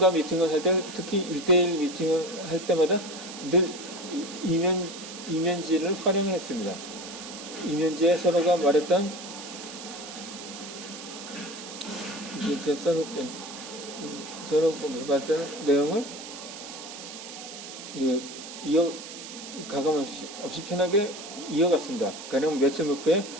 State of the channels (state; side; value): noise; right; hiss, 12 dB below the sound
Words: 미팅을 할 때, 특히 1대1 미팅을 할 때마다 늘 이면지를 활용했습니다. 이면지에 서로가 말했던 서로 말했던 내용을 가감 없이 편하게 이어갔습니다. 가령 며칠 목표에